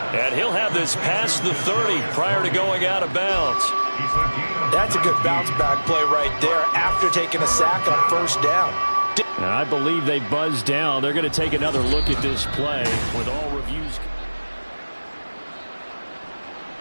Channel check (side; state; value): both; inverted; correlation -1.00